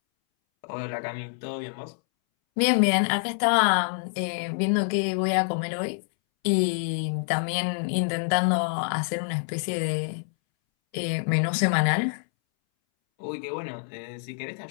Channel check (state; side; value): silent; right; 61 dB below the other